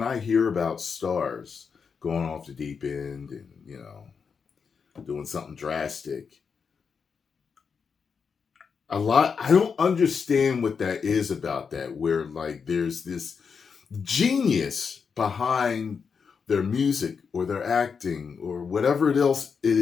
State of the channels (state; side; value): quieter; right; 5.9 dB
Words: I hear about stars going off the deep end and doing something drastic, I don't understand what that is about that. Where like there's this genius behind their music or their acting or whatever else it